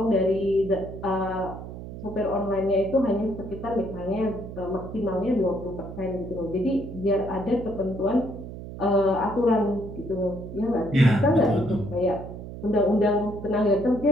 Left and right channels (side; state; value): right; noise; hum, 11 dB below the sound